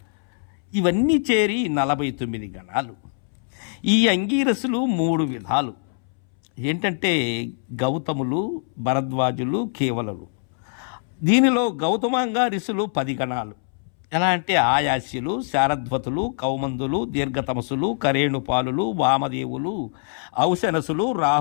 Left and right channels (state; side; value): silent; right; 63 dB below the other